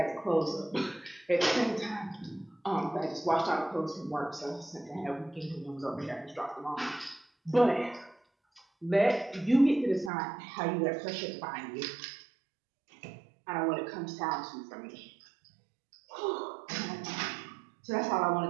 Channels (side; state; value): left; drops out; at 10.1 s